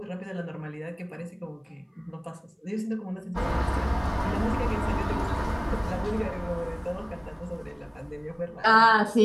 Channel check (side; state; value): both; identical; correlation 1.00